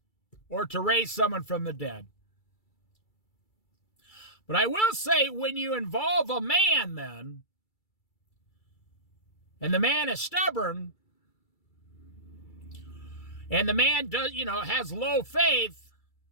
or to raise someone from the dead. But I will say, when you involve a man then, and the man is stubborn, and the man has low faith,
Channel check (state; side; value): late; right; 2.3 ms